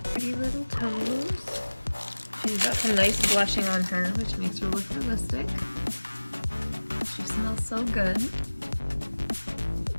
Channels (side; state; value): both; inverted; correlation -1.00